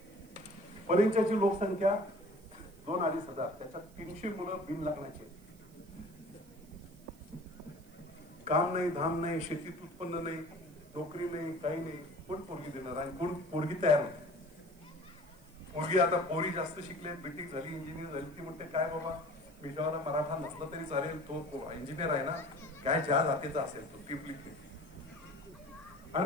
परिंच्याची लोकसंख्या 2-2.5 हजार, त्याच्यात 300 मुलं बिन लग्नाचे. काम नाही, धाम नाही, शेतीत उत्पन्न नाही, नोकरी नाही, काही नाही. कोण पोरगी देणार आणि कोण पोरगी तयार होते? पोरगी आता पोरी जास्त शिकले, बीटेक झाली, इंजिनियर झाली. ती म्हणते काय बाबा विषयाला मराठा नसला तरी चालेल, तो इंजिनियर आहे ना, काय ज्या जातीचा असेल तो टिपलिक.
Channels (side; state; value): right; noise; hiss, 27 dB below the sound